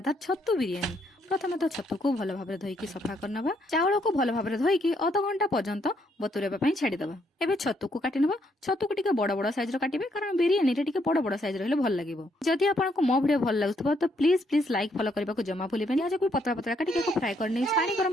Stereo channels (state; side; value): normal; both; correlation 0.72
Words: छतु बिरियानी। प्रथम तो छतु को भल भाव धोईकी सफा करनबा। चाउल को भल भाव धोईकी अध घंटा पर्यंत बतुरेबा पई छाड़ीदबा। एबे छतु को काटी नबा। छतु को टिके बड़ बड़ साइज रो काटिबे कारण बिरियानी रे टिके बड़ बड़ साइज रहले भल लागिवो। जदि आपनको मो वीडियो भल लागुथबो तो प्लीज प्लीज लाइक फॉलो करबा को जमा भूलिबेनी। आज को पतला पतला काटी के फ्राई करनी। पानी गरम